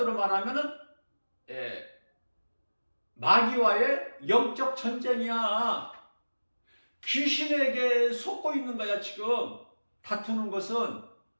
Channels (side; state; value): both; inverted; correlation -1.00